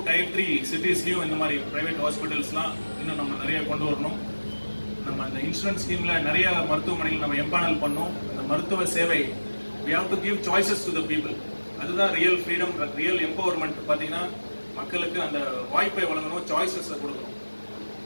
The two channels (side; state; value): both; inverted; correlation -1.00